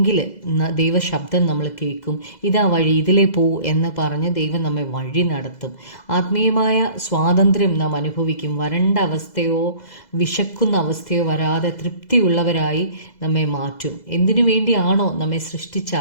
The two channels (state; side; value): late; right; 2.0 ms